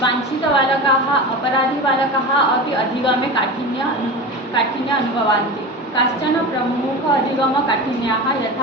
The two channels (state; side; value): normal; both; correlation 0.28